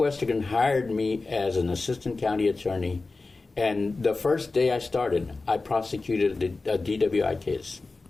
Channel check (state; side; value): quieter; right; 3.7 dB